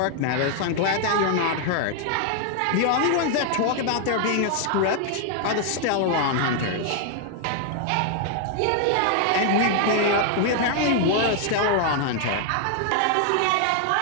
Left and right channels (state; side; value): different; both; correlation 0.00